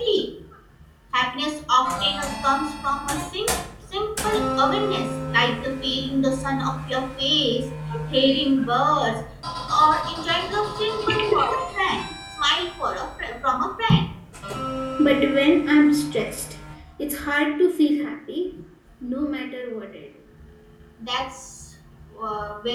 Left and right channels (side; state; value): both; identical; correlation 1.00